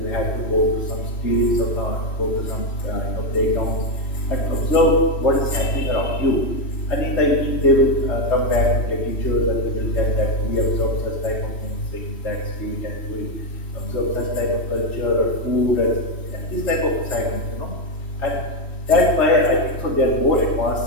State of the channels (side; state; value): right; late; 3.1 ms